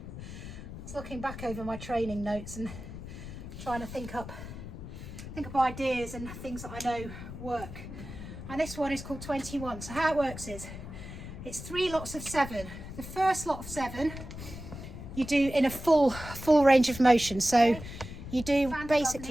was looking back over my training notes and trying to think up ideas and things that I know work. And this one is called 21. So how it works is, it's 3 lots of 7. The first lot of 7 you do in a full range of motion. So you do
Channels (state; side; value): noise; left; rumble, 11 dB below the sound